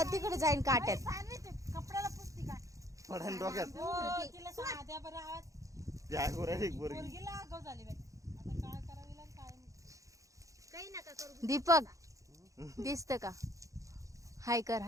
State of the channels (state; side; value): late; left; 0.16 ms